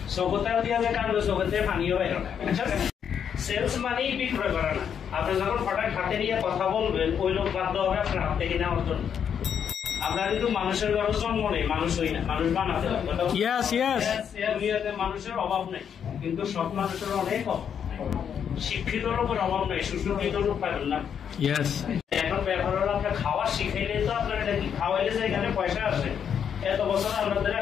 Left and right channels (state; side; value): quieter; right; 8.0 dB